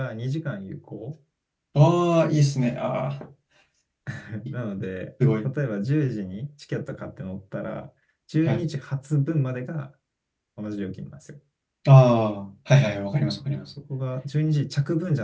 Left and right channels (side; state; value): both; identical; correlation 1.00